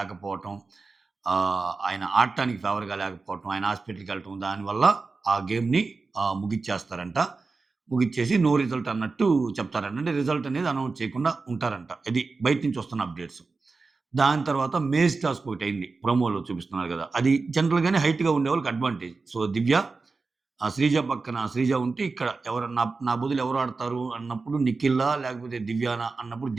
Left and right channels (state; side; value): quieter; left; 4.1 dB